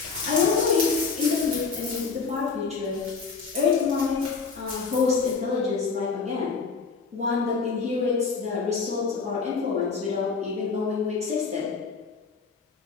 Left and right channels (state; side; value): quieter; right; 4.9 dB